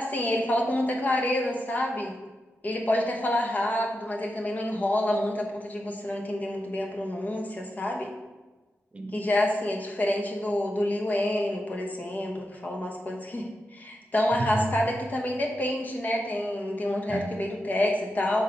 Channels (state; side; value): normal; both; correlation 0.88